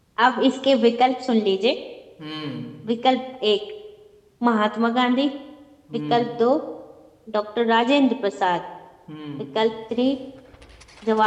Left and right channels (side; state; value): both; identical; correlation 1.00